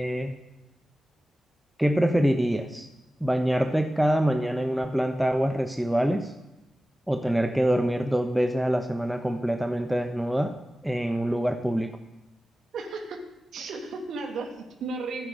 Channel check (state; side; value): normal; both; correlation 0.95